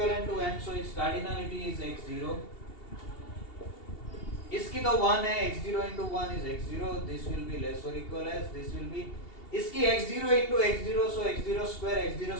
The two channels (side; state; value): right; late; 2.8 ms